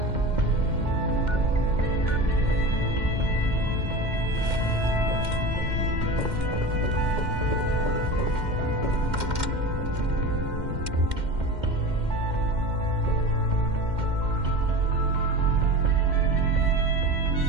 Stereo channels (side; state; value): left; late; 2.1 ms